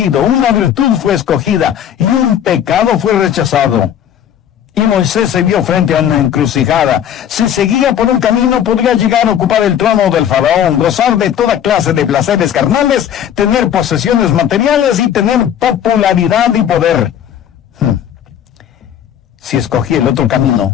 una virtud fue escogida y un pecado fue rechazado. Y Moisés se vio frente a una encrucijada. Si seguía por un camino, podría llegar a ocupar el trono del faraón, gozar de toda clase de placeres carnales, tener posesiones materiales y tener popularidad y poder. Si escogía el otro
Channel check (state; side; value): quieter; right; 9.7 dB